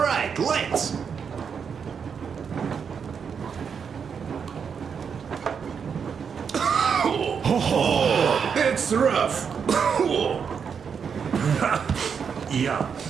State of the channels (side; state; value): left; quieter; 6.6 dB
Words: let's. It's rough. Yeah,